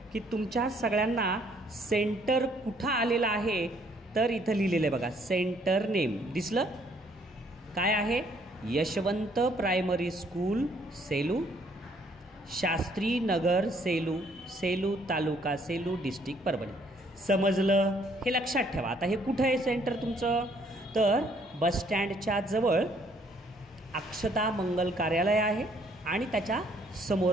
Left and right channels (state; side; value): normal; both; correlation 0.65